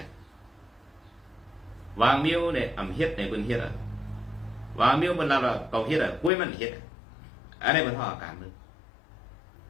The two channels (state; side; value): drops out; right; at 6.3 s